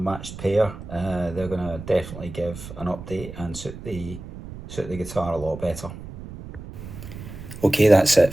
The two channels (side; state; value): right; noise; rumble, 12 dB below the sound